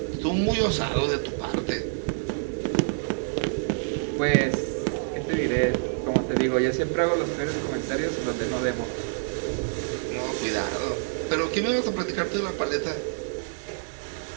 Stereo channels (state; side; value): silent; left; digital silence